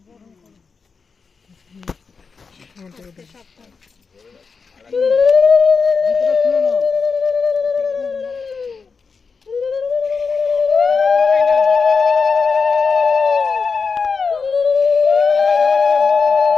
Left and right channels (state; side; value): quieter; right; 5.1 dB